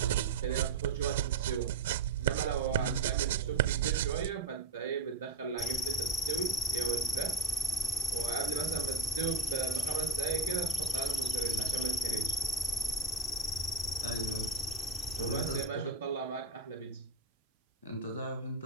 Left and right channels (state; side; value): quieter; left; 3.6 dB